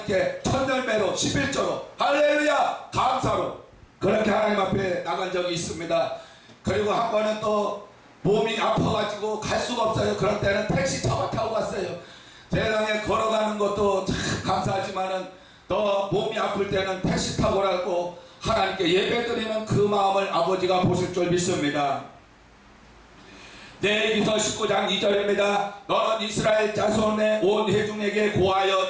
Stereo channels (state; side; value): identical; both; correlation 1.00